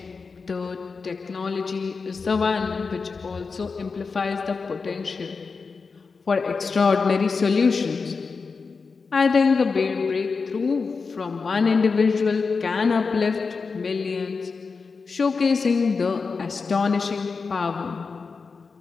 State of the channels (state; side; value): quieter; right; 4.8 dB